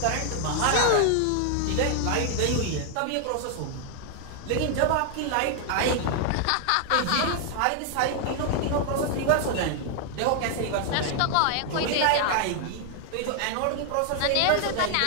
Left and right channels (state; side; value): different; both; correlation 0.00